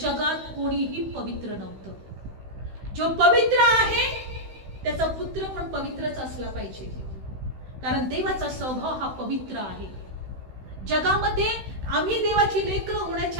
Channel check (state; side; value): late; left; 16 ms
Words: कोणीही पवित्र नव्हतं. जो पवित्र आहे त्याचा पुत्र पण पवित्रच असला पाहिजे, कारण देवाचा स्वभाव हा पवित्र आहे. जगामध्ये आम्ही देवाची लेकरं